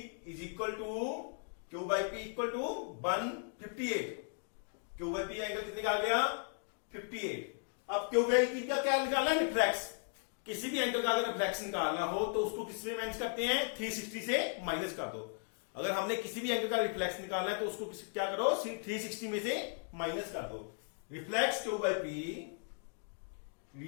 is equal to Q by P equal to 158. Q by P angle कितने का आ गया, 58. अब Q by P का क्या निकालना है, रिफ्लेक्स. किसी भी एंगल का अगर रिफ्लेक्स निकालना हो तो उसको किस में माइनस करते हैं, 360 से माइनस कर दो. अगर हमने किसी भी एंगल का रिफ्लेक्स निकालना है तो उसको क्या करो, 360 में से माइनस कर दो. Reflex Q by P,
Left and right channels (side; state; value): right; silent; 53 dB below the other